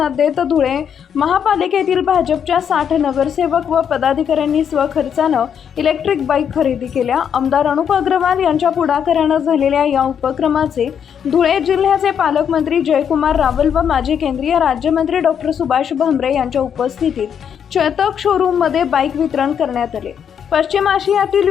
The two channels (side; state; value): right; quieter; 8.1 dB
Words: देत धुळे महापालिकेतील भाजपच्या 60 नगरसेवक व पदाधिकाऱ्यांनी स्वखर्चानं इलेक्ट्रिक बाईक खरेदी केल्या। आमदार अनुप अग्रवाल यांच्या पुढाकारानं झालेल्या या उपक्रमाचे धुळे जिल्ह्याचे पालकमंत्री जयकुमार रावल व माजी केंद्रीय राज्यमंत्री डॉक्टर सुभाष भामरे यांच्या उपस्थितीत चेतक शोरूममध्ये बाईक वितरण करण्यात आले। पश्चिम आशियातील